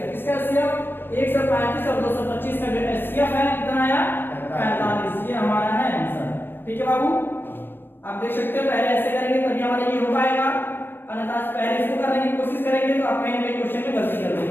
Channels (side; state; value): right; late; 0.10 ms